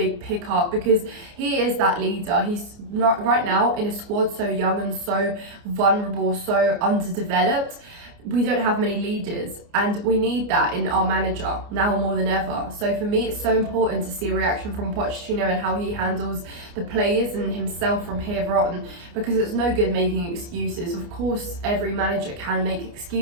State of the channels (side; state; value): left; late; 29 ms